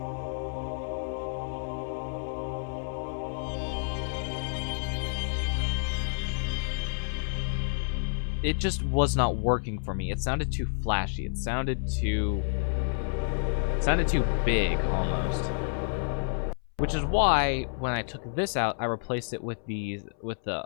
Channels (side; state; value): right; silent; 58 dB below the other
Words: It just was not working for me. It sounded too flashy. It sounded too big almost. Which is why when I took this out, I replaced it with the